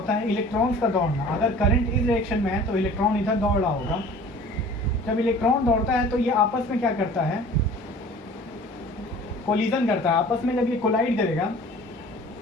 है, इलेक्ट्रॉन्स का दौड़ना। अगर करंट इस डायरेक्शन में है तो इलेक्ट्रॉन इधर दौड़ रहा होगा। जब इलेक्ट्रॉन दौड़ता है तो ये आपस में क्या करता है, कोलिजन करता है आपस में। जब ये कोलाइड करेगा,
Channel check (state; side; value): normal; both; correlation 0.45